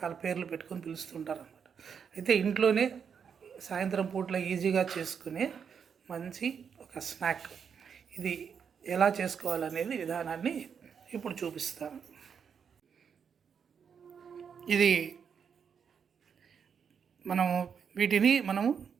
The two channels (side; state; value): left; quieter; 7.0 dB